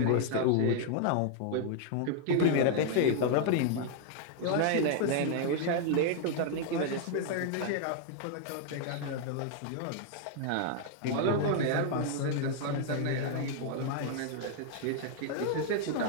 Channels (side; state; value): both; different; correlation 0.00